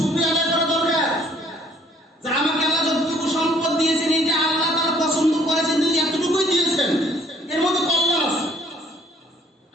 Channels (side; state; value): both; normal; correlation 0.60